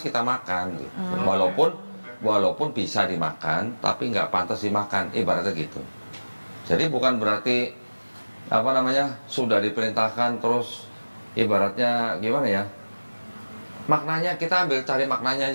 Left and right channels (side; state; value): both; inverted; correlation -1.00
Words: makan gitu. Walaupun bisa dimakan, tapi enggak pantas dimakan, ibaratnya gitu. Jadi bukan berarti apa namanya sudah diperintahkan terus ibaratnya gimana ya, maknanya kita ambil cari maknanya